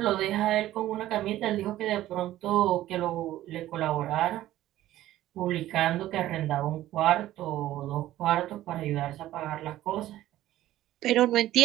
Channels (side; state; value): left; quieter; 14.3 dB